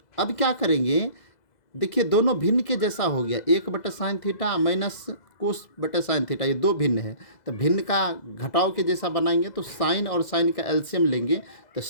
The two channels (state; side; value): late; right; 2.0 ms